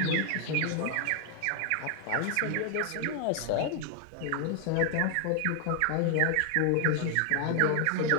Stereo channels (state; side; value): different; both; correlation 0.00